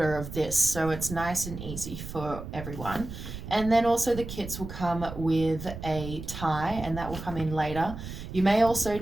of this, so it's nice and easy for everyone. And then also the kits will come with a tie, and that will come in later. You may also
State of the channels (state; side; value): noise; right; rumble, 10 dB below the sound